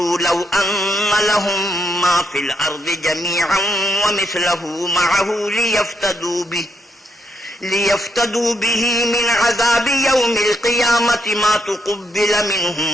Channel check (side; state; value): both; normal; correlation 0.77